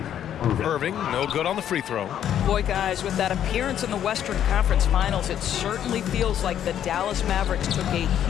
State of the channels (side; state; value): right; quieter; 10.2 dB